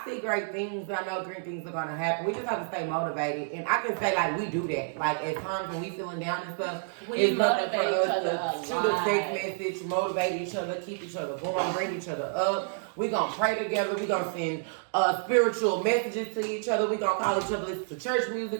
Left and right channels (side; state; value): left; silent; digital silence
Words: see great things. I know great things are gonna happen. We just have to stay motivated, and I can say like we do that. Like at times when we feeling down and stuff, it's nothing for us to shoot a text message, motivate each other, keep each other going, bring each other up. We gonna pray together. We gonna send spiritual messages to each other. We gonna call each other, listen to church